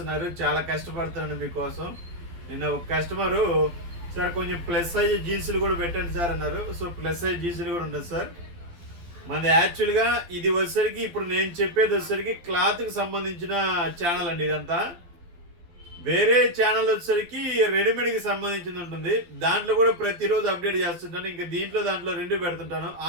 చాలా కష్టపడుతున్నాను మీకోసం. నిన్న ఒక కస్టమరు సార్ కొంచెం ప్లస్ సైజ్ జీన్సులు కూడా పెట్టండి సార్ అన్నారు. సో ప్లస్ సైజ్ జీన్సులు కూడా ఉంటుంది సార్. మనది యాక్చువల్గా ఇది వచ్చేసరికి ఇప్పుడు నేను చెప్పేది వచ్చేసరికి క్లాత్కి సంబంధించిన ఛానల్ అండి. ఇదంతా వేరే ఛానల్ వచ్చేసరికి రెడీమేడ్కి సంబంధించింది ఉంటుంది. దాంట్లో కూడా ప్రతిరోజు అప్డేట్ చేస్తుంటాను. ఇంకా దాంట్లో రెండు పెడుతుంటాను.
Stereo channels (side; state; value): left; late; 12 ms